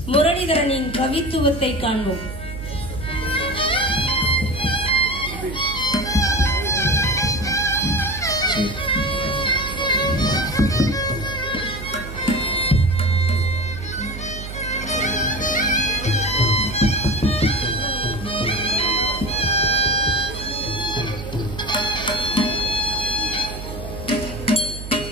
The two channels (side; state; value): right; noise; hum, 10 dB below the sound